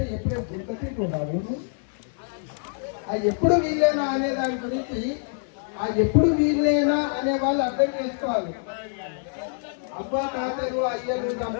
ఎప్పుడే గుర్తు ఆ ఎప్పుడు వీలేనా అనే దాని గురించి ఆ ఎప్పుడు వీలేనా అనే వాళ్ళు అర్థం చేసుకోవాలి. అబ్బా తాతలు అయ్యలు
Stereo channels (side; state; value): right; silent; 61 dB below the other